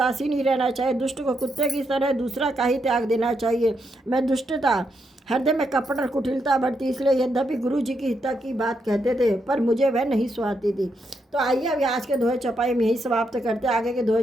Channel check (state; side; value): normal; both; correlation 0.80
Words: ही रहना चाहिए, दुष्ट को कुत्ते की तरह दूसरा का ही त्याग देना चाहिए। मैं दुष्टता हृदय में कपट और कुटिलता बढ़ती, इसलिए यद्यपि गुरु जी की हिता की बात कहते थे पर मुझे वह नहीं सुहाती थी। तो आइए अभी आज के दोहे चौपाई में यही समाप्त करते हैं। आगे के दोहे